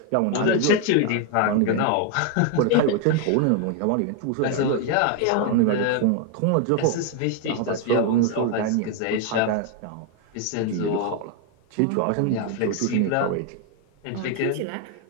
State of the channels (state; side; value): different; both; correlation 0.01